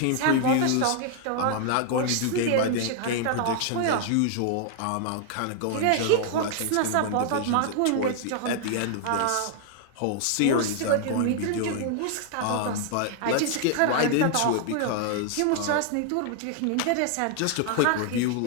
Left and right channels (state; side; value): different; both; correlation 0.00